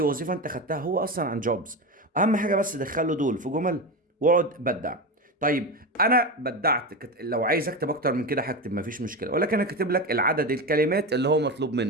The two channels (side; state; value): both; normal; correlation 0.20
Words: وظيفة انت خدتها هو اصلا عن jobs. اهم حاجة بس دخله دول في جمل واقعد بدع. طيب انا بدعت، لو عايز اكتب اكتر من كده هكتب مفيش مشكلة، ولكن انا كاتب لك العدد الكلمات اللي هو مطلوب